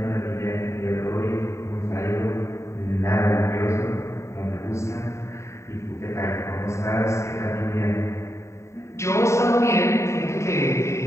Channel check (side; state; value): right; late; 0.14 ms